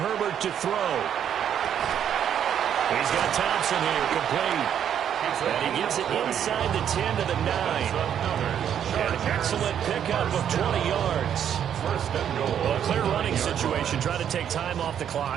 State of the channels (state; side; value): quieter; left; 9.2 dB